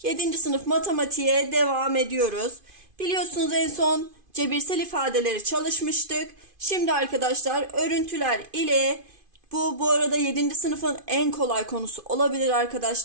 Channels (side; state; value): left; late; 2.5 ms